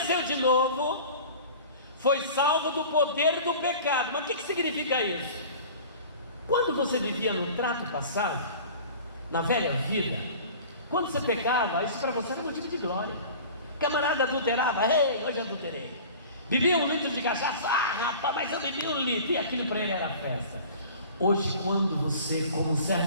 de novo foi salvo do poder do pecado. Mas o que significa isso? Quando você vivia no trato passado, na velha vida, quando você pecava, isso para você era motivo de glória. Camarada adulterava: ei, hoje adulterei. Bebia 1 litro de cachaça: ah, rapaz, mas eu bebi 1 litro. E aquilo para ele era festa. Hoje, quando você, como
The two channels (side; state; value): both; inverted; correlation -0.41